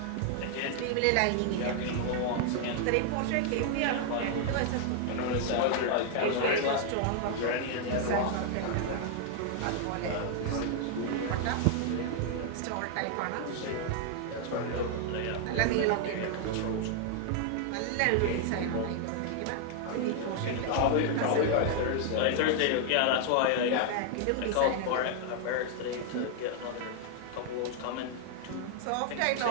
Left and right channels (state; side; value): different; both; correlation 0.00